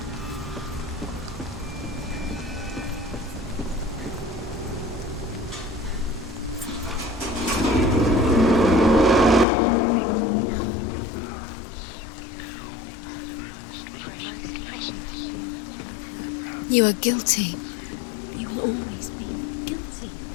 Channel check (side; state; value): right; drops out; at 9.5 s